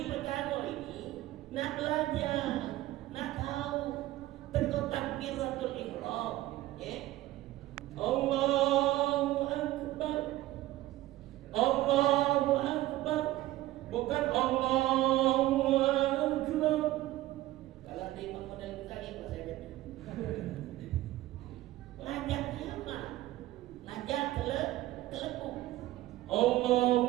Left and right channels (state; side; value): quieter; left; 16.2 dB